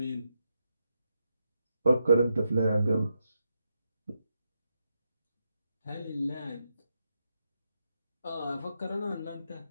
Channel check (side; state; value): both; inverted; correlation -0.84